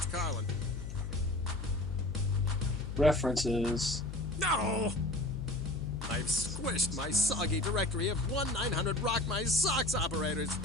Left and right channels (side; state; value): left; noise; hum, 8 dB below the sound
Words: Carlin. References. No! I've squished my soggy directory of 1-900 Rock My Socks operators. Is